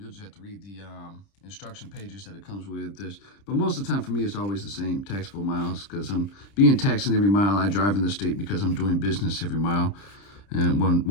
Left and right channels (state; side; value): late; right; 30 ms